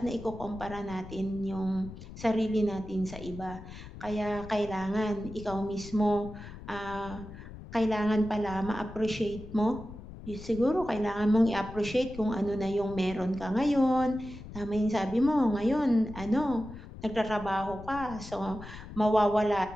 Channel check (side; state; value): left; noise; rumble, 14 dB below the sound